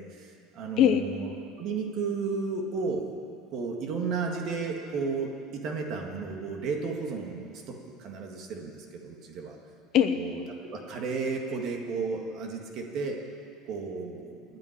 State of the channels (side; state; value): both; normal; correlation 0.37